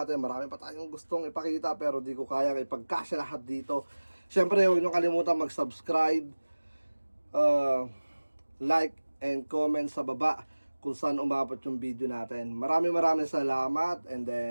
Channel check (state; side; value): inverted; both; correlation -1.00